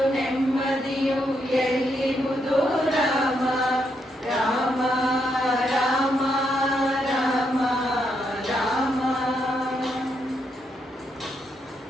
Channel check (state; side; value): normal; both; correlation 0.79